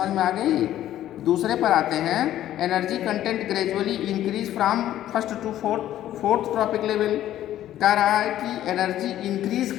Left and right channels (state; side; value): quieter; right; 12.6 dB